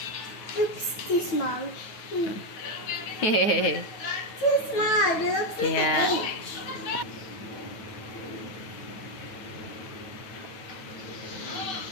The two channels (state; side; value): late; right; 9.3 ms